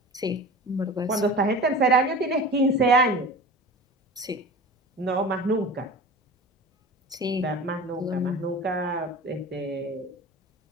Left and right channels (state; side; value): normal; both; correlation 0.35